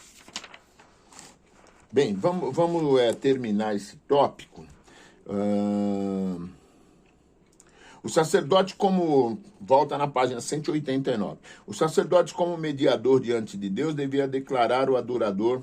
Bem, vamos terminar esse tópico. O sacerdote volta na página 189. O sacerdote como mediador diante de Deus devia declarar o adorador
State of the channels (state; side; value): identical; both; correlation 1.00